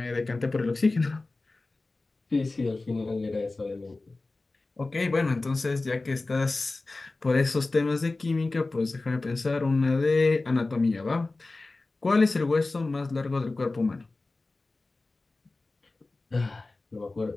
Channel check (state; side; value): quieter; right; 3.3 dB